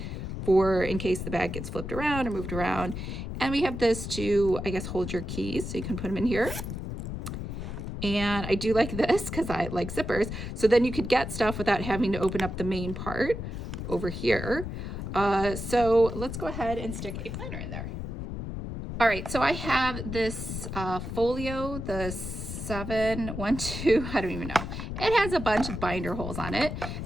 for in case the bag gets flipped around or moved around. And we have this to, I guess, hold your keys. So you can put them in here. And I do like this because I like zippers. So then you could get stuff without having to open up the main part over here. So let's go ahead and stick a planner in there. All right, so I have this folio, the 712, I don't even know. It has a bunch of binder holes on it.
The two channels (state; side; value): noise; left; rumble, 6 dB below the sound